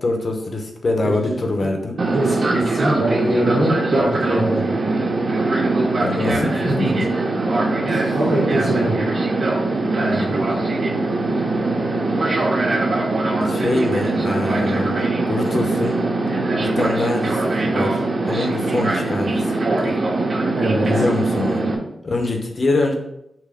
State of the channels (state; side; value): normal; both; correlation 0.88